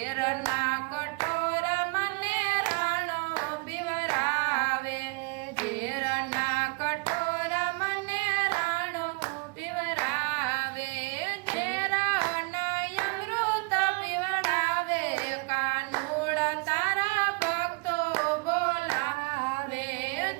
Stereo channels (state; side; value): quieter; left; 29.1 dB